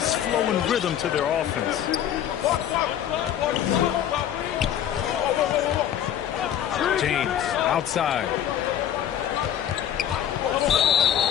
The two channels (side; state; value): right; quieter; 10.3 dB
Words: flow and rhythm to their offense. James outside.